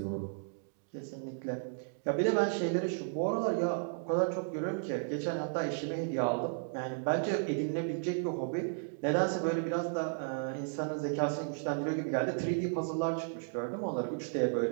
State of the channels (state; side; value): silent; left; digital silence